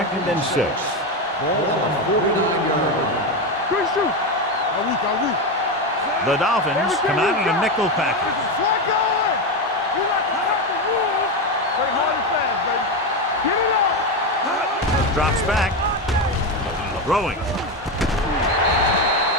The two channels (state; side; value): normal; both; correlation 0.13